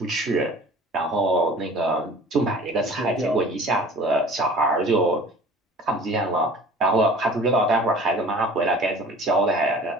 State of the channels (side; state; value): both; normal; correlation 0.45